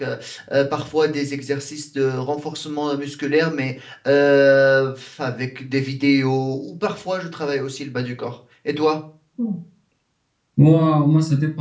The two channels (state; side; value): identical; both; correlation 1.00